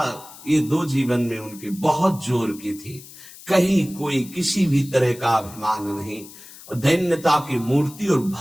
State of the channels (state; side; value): noise; left; hiss, 18 dB below the sound